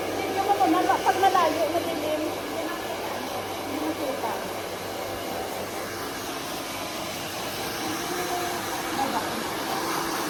Tingnan mo naman, pag malayo, madilim. Hindi makita.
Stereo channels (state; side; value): identical; both; correlation 1.00